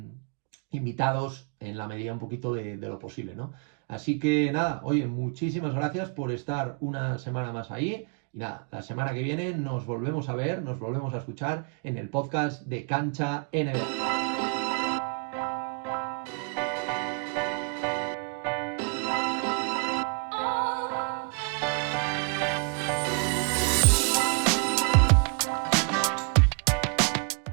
invitados en la medida un poquito de lo posible, ¿no? Así que nada, oye, muchísimas gracias por estar una semana más ahí. Y nada, la semana que viene nos volvemos a ver, nos volvemos a escuchar en el podcast de Cancha NBA.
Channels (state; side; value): quieter; left; 35.1 dB